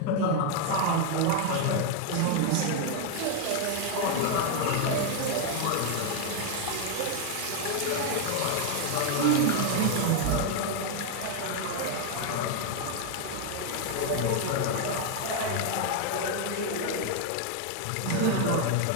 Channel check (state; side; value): different; both; correlation 0.01